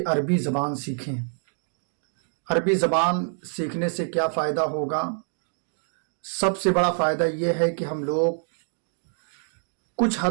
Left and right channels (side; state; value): left; silent; digital silence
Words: अरबी ज़बान सीखें। अरबी ज़बान सीखने से क्या फ़ायदा होगा? सबसे बड़ा फ़ायदा ये है कि हम लोग कुछ